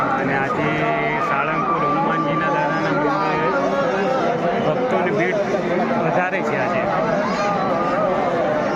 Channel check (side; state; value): both; identical; correlation 1.00